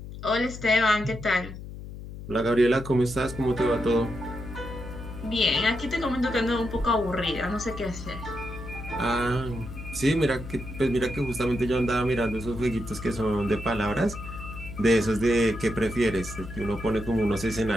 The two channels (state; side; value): noise; left; hum, 11 dB below the sound